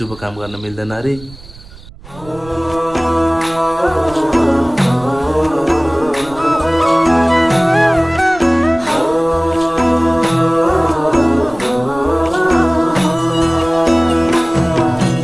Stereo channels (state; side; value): noise; right; rumble, 19 dB below the sound